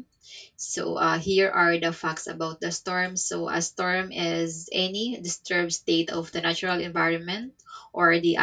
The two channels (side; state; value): both; identical; correlation 1.00